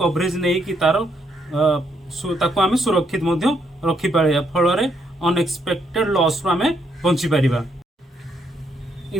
नहीं कि तार ताकू आमे सुरक्षित मध्य रखि पारिबा। फल अनएक्सपेक्टेड लॉस रो आमे बंची पारिबा।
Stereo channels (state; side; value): normal; both; correlation 0.74